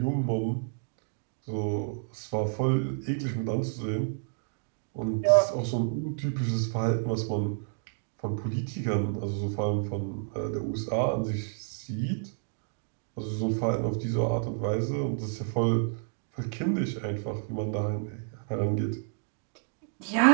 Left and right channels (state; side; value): silent; left; digital silence